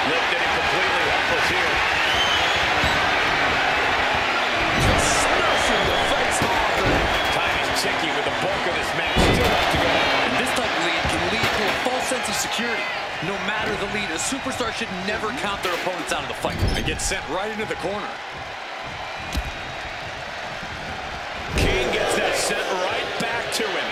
Lifted him completely helpless here. Just smashing the face hard there. Time is ticking with the bulk of this match still left to go. And this type of lead can lead to a false sense of security. No matter the lead, a superstar should never count their opponents out of the fight. And get sent right into the corner. King gets that sent right back to him.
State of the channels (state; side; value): identical; both; correlation 1.00